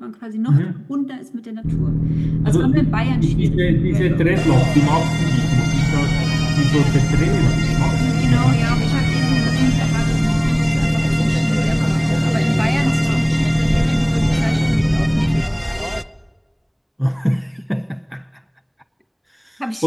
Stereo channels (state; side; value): identical; both; correlation 1.00